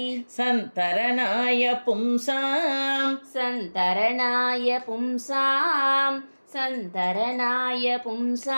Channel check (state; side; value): inverted; both; correlation -1.00